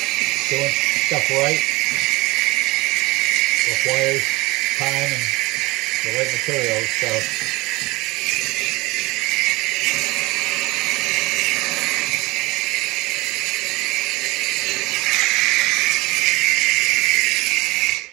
doing stuff right requires time and the right materials, so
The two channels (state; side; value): quieter; left; 22.0 dB